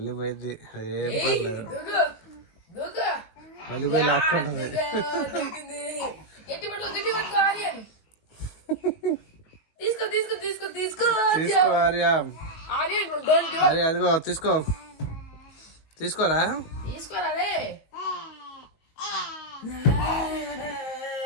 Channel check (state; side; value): late; right; 19 ms